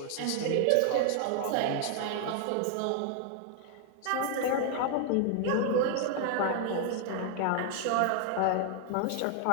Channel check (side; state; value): both; different; correlation 0.00